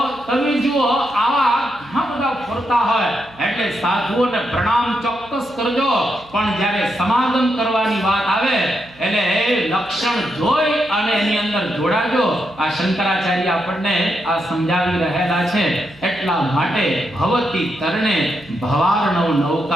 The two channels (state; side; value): noise; right; hum, 26 dB below the sound